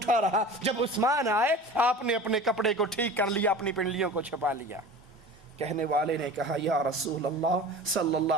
رہا۔ جب عثمان آئے، آپ نے اپنے کپڑے کو ٹھیک کر لیا، اپنی پنڈلیوں کو چھپا لیا۔ کہنے والے نے کہا یا رسول اللہ صلی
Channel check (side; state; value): both; normal; correlation 0.37